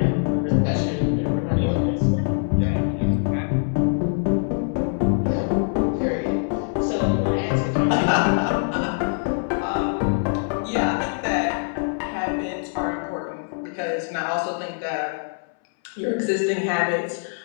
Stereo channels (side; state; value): right; silent; 63 dB below the other